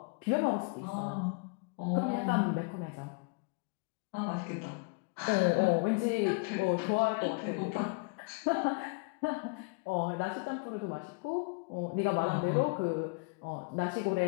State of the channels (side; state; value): right; quieter; 30.4 dB